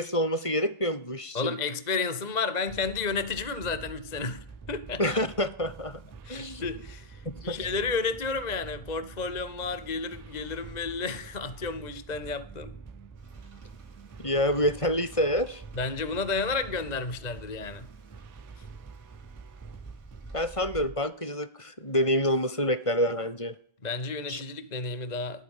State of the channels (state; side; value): late; right; 1.9 ms